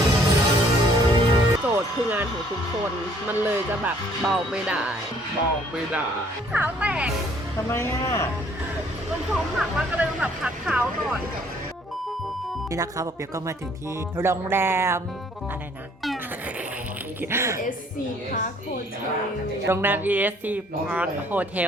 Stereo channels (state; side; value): normal; both; correlation 0.61